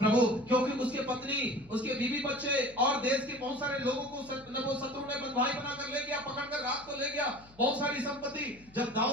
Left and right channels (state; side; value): noise; left; hum, 24 dB below the sound